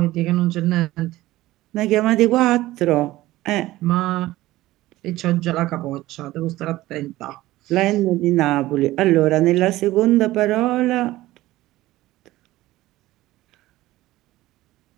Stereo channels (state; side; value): quieter; left; 16.9 dB